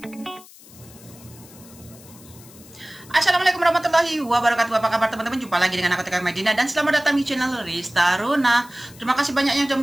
Assalamualaikum warahmatullahi wabarakatuh. Apa kabar teman-teman? Jumpa lagi dengan aku Tika Medina dan selamat datang di channel Rista Runa. Terima kasih banyak yang sudah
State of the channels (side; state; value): left; noise; hiss, 22 dB below the sound